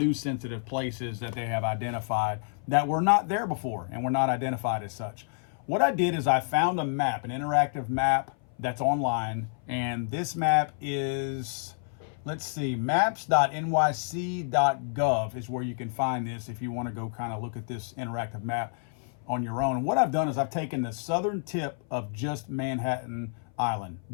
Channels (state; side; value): silent; right; 57 dB below the other